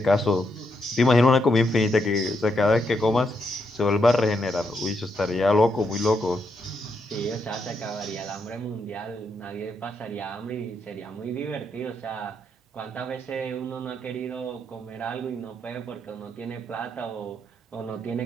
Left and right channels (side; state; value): both; normal; correlation 0.79